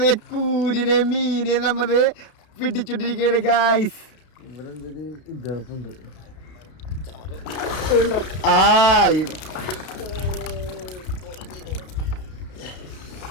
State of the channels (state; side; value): late; right; 32 ms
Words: കൂരിനെ മീനെ നമ്മള് പിടിച്ചോണ്ടിരിക്കുകയാണ് ഗൈസ്. ഇവിടെ എന്തൊരു ഇതപ്പുണ്ട്.